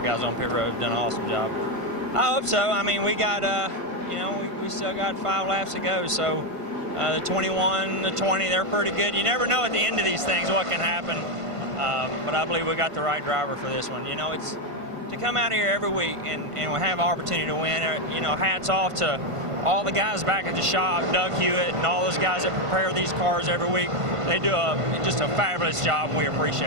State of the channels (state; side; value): late; left; 1.5 ms